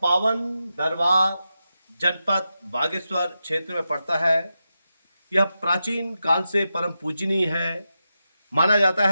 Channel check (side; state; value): both; inverted; correlation -0.89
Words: पावन दरबार जनपद बागेश्वर क्षेत्र में पड़ता है। यह प्राचीन काल से परम पूजनीय है।